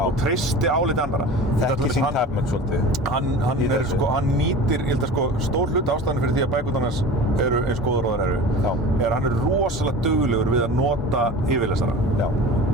treysti álit annarra. Þekki sín tæpmenn svolítið. Hann nýtir, ég held að stór hluti ástæðan fyrir því að bækurnar hans eru eins góðar og þær eru hann er rosalega duglegur við að nota yfirlesara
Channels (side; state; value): both; normal; correlation 0.36